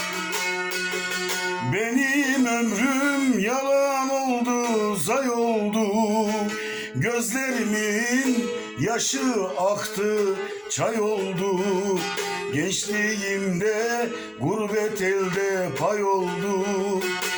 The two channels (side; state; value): both; identical; correlation 1.00